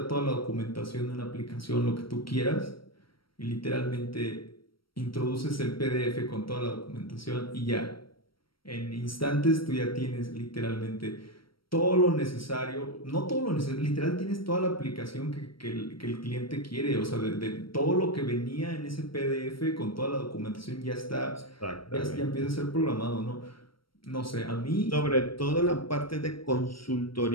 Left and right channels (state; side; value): late; right; 0.74 ms